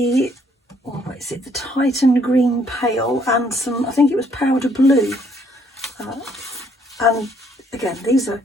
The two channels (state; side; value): normal; both; correlation 0.67